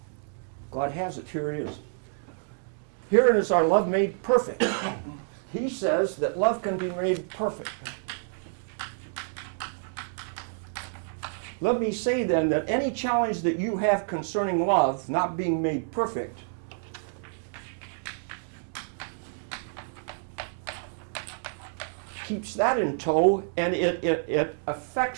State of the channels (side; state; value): left; silent; digital silence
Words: God has it, here it is. Here is our love made perfect. He says that love can be made perfect. Let me say then that any challenge that you have concerning love not being made perfect keeps that in tow, and it